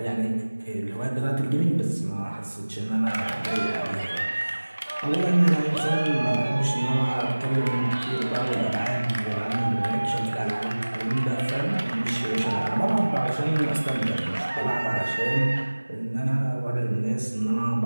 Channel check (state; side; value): inverted; both; correlation -1.00